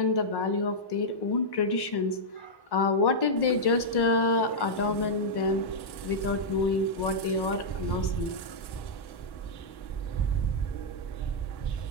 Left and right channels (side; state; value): right; late; 1.1 ms